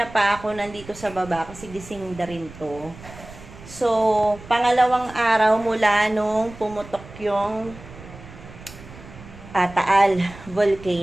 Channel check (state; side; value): noise; right; rumble, 17 dB below the sound